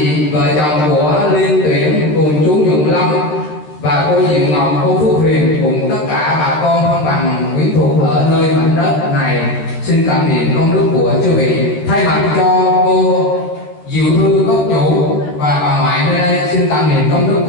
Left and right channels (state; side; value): late; right; 13 ms